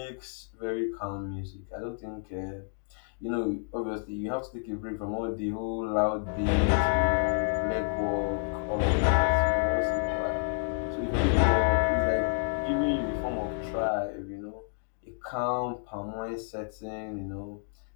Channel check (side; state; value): right; silent; digital silence